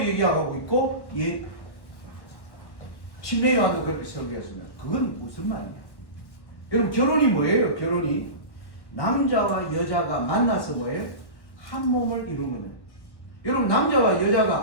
있고 침례 요한도 그렇게 설교했습니다. 그건 무슨 말이냐? 여러분 결혼이 뭐예요? 결혼이 남자와 여자가 만나서 뭐예요? 한 몸을 이루는 거예요. 여러분 남자와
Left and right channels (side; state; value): right; late; 1.1 ms